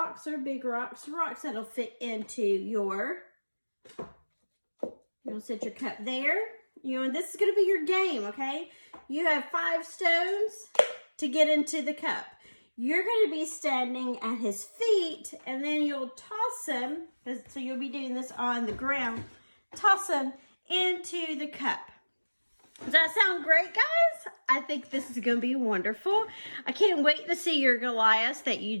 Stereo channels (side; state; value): both; inverted; correlation -1.00